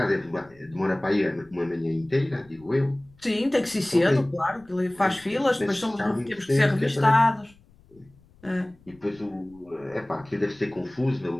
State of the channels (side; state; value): left; noise; rumble, 28 dB below the sound